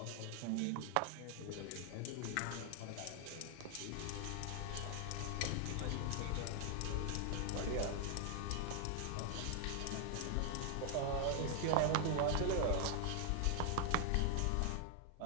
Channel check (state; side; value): different; both; correlation 0.00